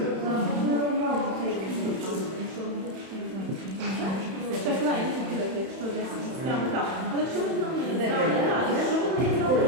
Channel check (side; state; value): left; late; 31 ms